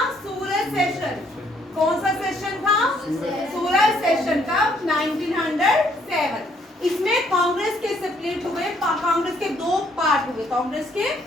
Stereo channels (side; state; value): both; normal; correlation 0.67